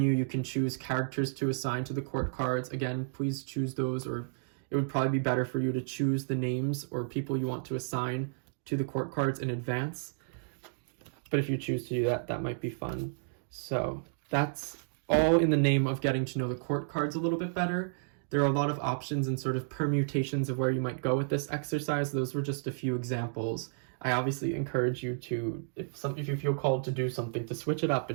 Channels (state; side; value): silent; left; digital silence